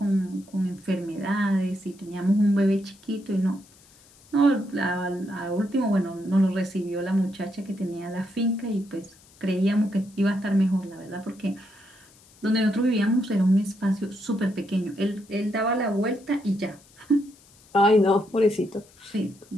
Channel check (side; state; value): left; noise; hiss, 27 dB below the sound